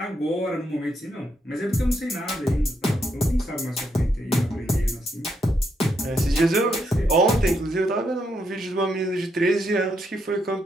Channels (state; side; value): normal; both; correlation 0.78